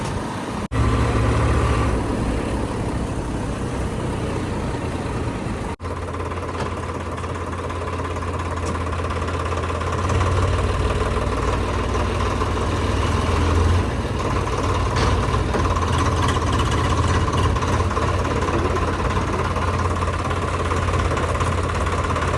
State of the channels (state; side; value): identical; both; correlation 1.00